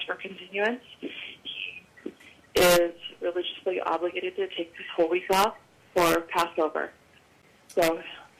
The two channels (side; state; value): both; identical; correlation 1.00